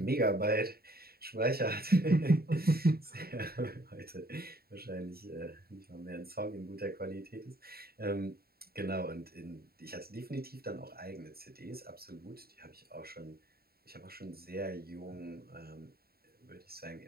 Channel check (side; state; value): left; late; 0.45 ms